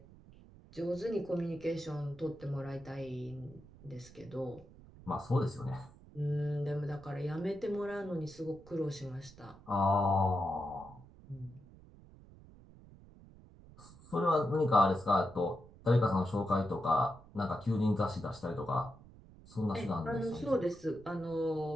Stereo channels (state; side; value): noise; right; rumble, 21 dB below the sound